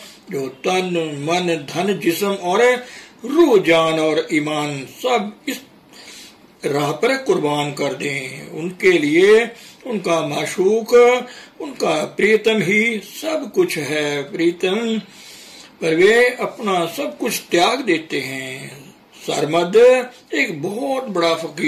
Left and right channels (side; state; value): both; identical; correlation 1.00